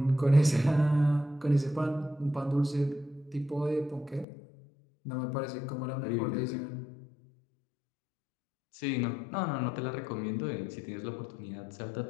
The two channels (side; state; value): right; drops out; at 4.2 s